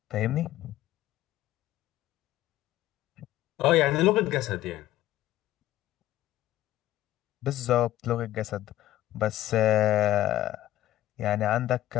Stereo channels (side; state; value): right; quieter; 14.4 dB